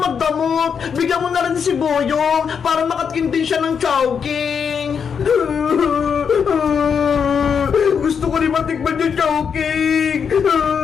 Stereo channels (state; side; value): quieter; right; 6.8 dB